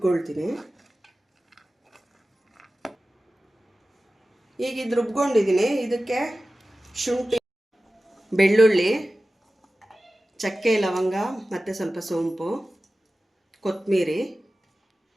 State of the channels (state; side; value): normal; both; correlation 0.95